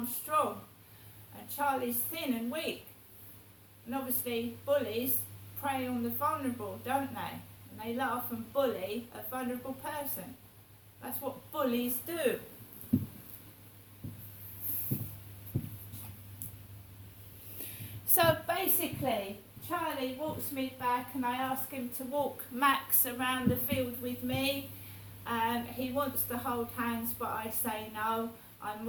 strong. And Charlie's thin and weak. And obviously bullies prey on the vulnerable, don't they? And they laugh and bully a vulnerable person. That's what bullies do. So basically, Charlie walks me back and I ask him to walk Max around the field with me. He wants to hold hands, but I say no. I'm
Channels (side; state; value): both; identical; correlation 1.00